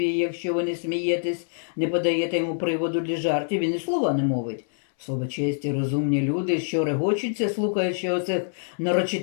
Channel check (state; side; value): silent; right; 62 dB below the other